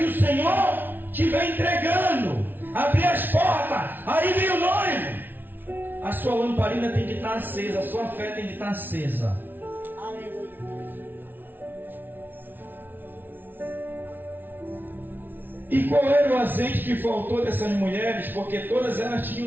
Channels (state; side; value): late; left; 0.093 ms